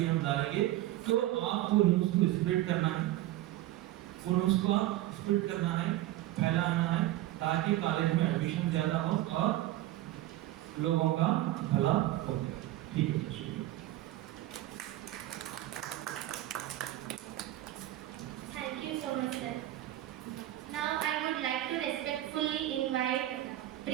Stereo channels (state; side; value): quieter; left; 15.1 dB